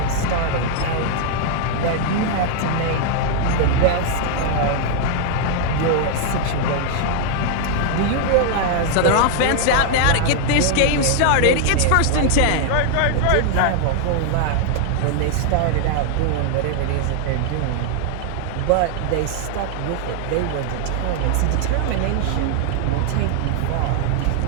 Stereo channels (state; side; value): different; both; correlation 0.00